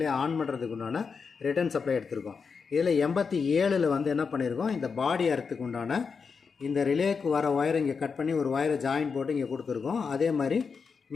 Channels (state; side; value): quieter; right; 5.5 dB